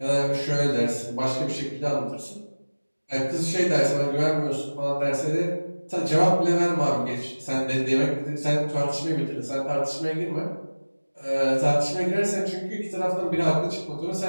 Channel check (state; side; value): inverted; both; correlation -1.00